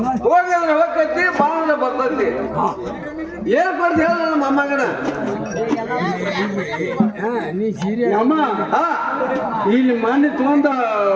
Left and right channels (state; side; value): identical; both; correlation 1.00